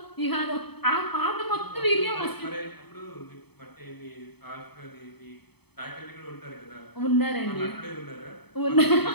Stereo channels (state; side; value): late; right; 0.98 ms